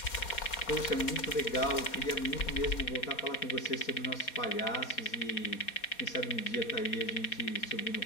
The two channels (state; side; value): late; right; 4.2 ms